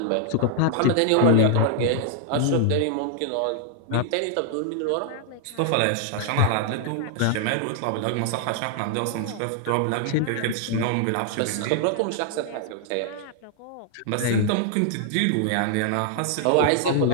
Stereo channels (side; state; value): both; different; correlation -0.01